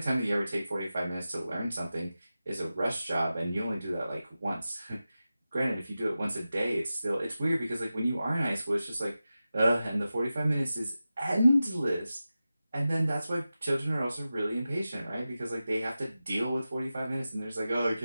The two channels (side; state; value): both; inverted; correlation -0.94